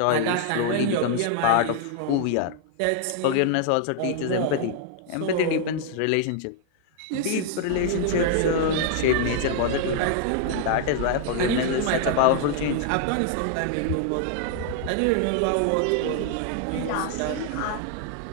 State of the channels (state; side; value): different; both; correlation 0.00